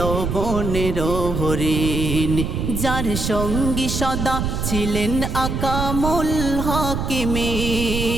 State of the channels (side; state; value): right; noise; rumble, 2 dB below the sound